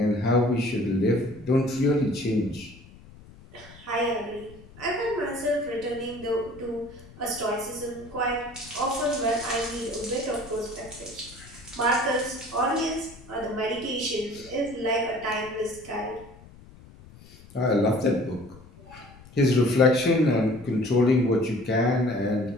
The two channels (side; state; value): left; noise; rumble, 21 dB below the sound